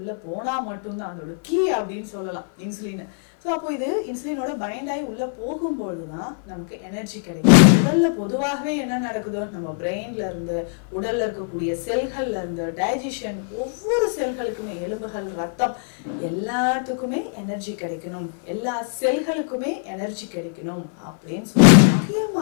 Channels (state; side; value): silent; right; 55 dB below the other